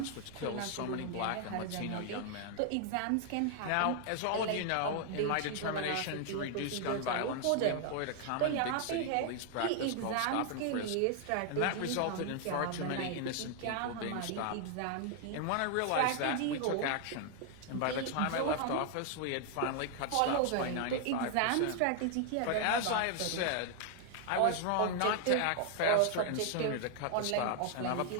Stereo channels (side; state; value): both; different; correlation 0.00